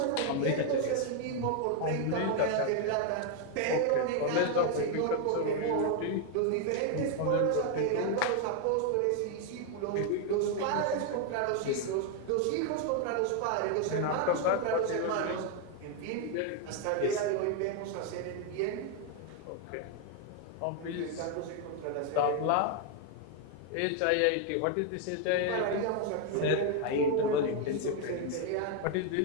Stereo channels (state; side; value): different; both; correlation 0.01